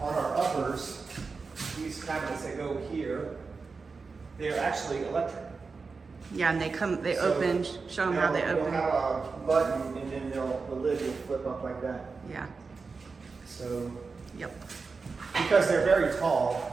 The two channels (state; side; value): quieter; left; 4.5 dB